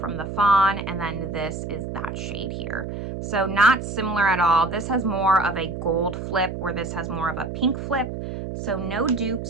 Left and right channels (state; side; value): noise; right; hum, 6 dB below the sound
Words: the Fawn, and then this is that shade here. So not similar at all. This has more of a gold flip, where this has more of a pink flip. So no